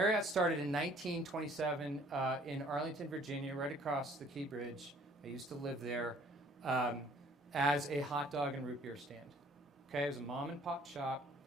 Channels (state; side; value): normal; both; correlation 0.57